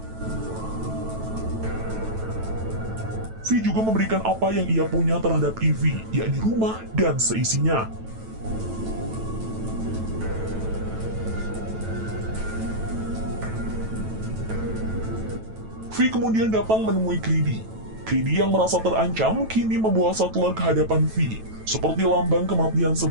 V juga memberikan apa yang ia punya terhadap Ivy, yakni rumah dan seisinya. V kemudian datang menemui Creedy. Creedy yang merasa terancam kini membawa Sattler ke hadapan V, seperti lambang kematian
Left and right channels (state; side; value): late; left; 9.1 ms